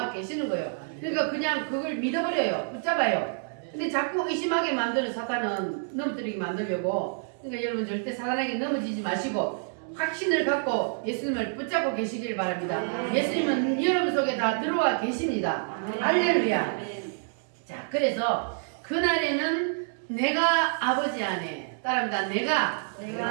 계시는 거예요. 그러니까 그냥 그걸 믿어버려요. 붙잡아요. 근데 자꾸 의심하게 만드는 사단은 넘어뜨리게 만들려고. 그러니까 여러분 절대 사단에게 넘어지지 마시고 확신을 갖고 예수님을 붙잡고 계시길 바랍니다. 예수님은 여러분 속에 다 들어와 계십니다. 할렐루야. 자, 그래서 그날에는 내가 아버지 안에 따라합니다. 내가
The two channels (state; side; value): silent; left; digital silence